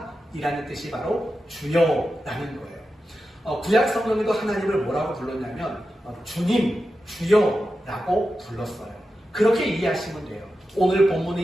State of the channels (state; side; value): normal; both; correlation 0.91